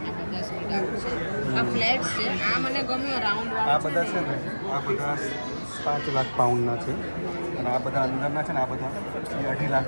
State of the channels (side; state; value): both; inverted; correlation -1.00